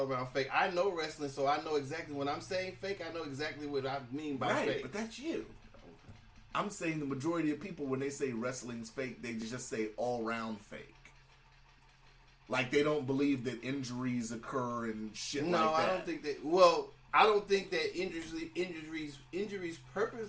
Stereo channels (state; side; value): identical; both; correlation 1.00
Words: around fake. I know wrestling, so I know exactly when I'm saying fake. I know exactly what I mean by Right, fake. but that's you. I'm saying the majority of people, when they say wrestling's fake, they just say all round fake. Like they don't believe that injuries occur and shit No, like that. I don't think that. Well, I don't think that injuries